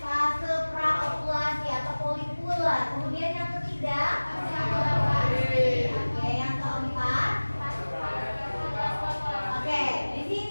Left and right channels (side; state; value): both; inverted; correlation -1.00